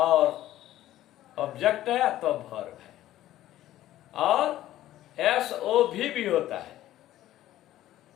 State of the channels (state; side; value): quieter; right; 13.9 dB